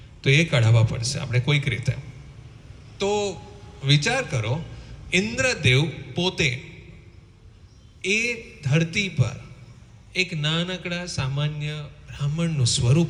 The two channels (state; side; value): identical; both; correlation 1.00